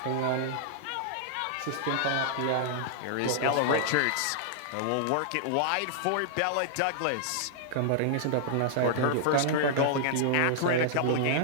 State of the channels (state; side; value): different; both; correlation -0.01